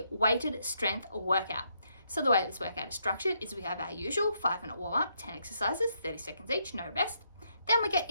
weighted strength workout. So the way this workout is structured is we have our usual 5-minute warm-up, 10 exercises, 30 seconds each, no rest. Then we get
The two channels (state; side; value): inverted; both; correlation -0.76